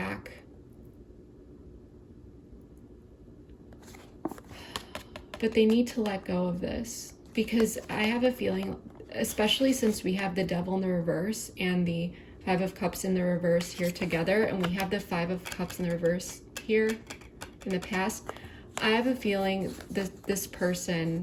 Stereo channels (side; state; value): both; identical; correlation 1.00